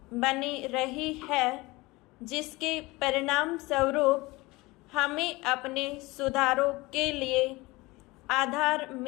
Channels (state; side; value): quieter; right; 22.0 dB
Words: बनी रही है, जिसके परिणाम स्वरूप हमें अपने सुधारों के लिए आधार